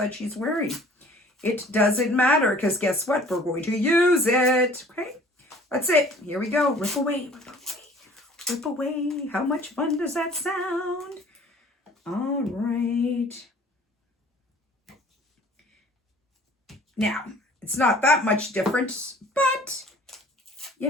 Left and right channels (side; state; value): both; normal; correlation 0.51